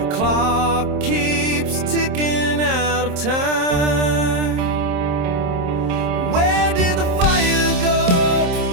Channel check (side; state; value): left; late; 27 ms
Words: clock keeps ticking out of time. Where did the fire go?